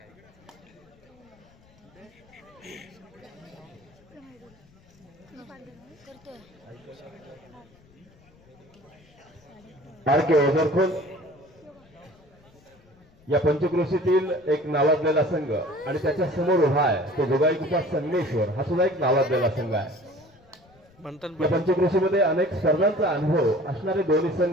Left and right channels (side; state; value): left; noise; rumble, 29 dB below the sound